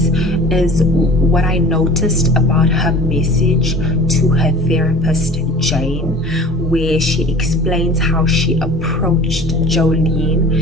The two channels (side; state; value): both; normal; correlation 0.43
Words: is what I noticed about her message to her therapist, Jane, where she explains how she approached